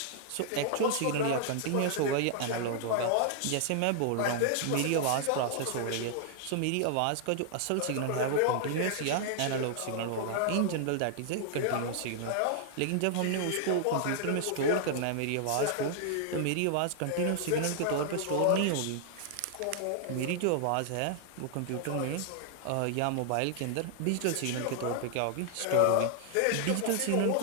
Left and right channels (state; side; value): different; both; correlation 0.00